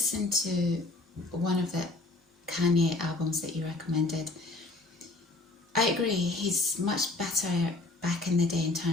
to one of the Kanye albums that you recommended. I agree, he's much better back in the day in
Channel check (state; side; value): quieter; right; 3.0 dB